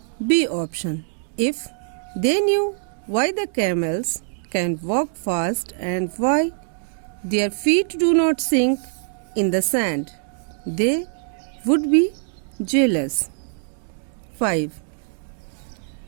B option. If they knew why the camels can walk fast and why their feet do not sink in the sand, they would be jealous. 5.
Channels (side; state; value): left; silent; digital silence